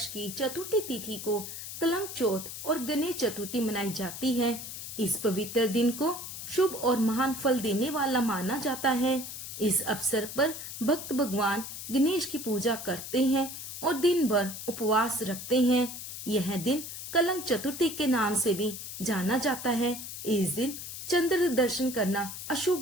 की चतुर्थी तिथि को कलंक चौथ और गणेश चतुर्थी मनाई जाती है। इस पवित्र दिन को शुभ और महान फल देने वाला माना जाता है। इस अवसर पर भक्त भगवान गणेश की पूजा करते हैं और दिन भर उपवास रखते हैं। यह दिन कलंक चतुर्थी के नाम से भी जाना जाता है। इस दिन चंद्र दर्शन करना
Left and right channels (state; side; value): noise; left; hiss, 9 dB below the sound